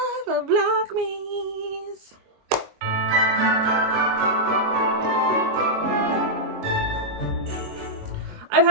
5 of Vlogmas. I've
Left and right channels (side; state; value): left; late; 22 ms